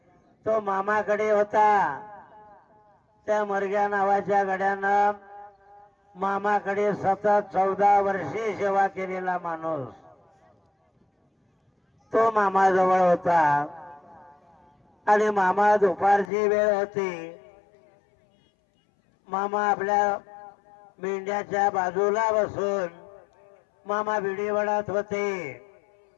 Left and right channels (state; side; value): drops out; right; at 16.3 s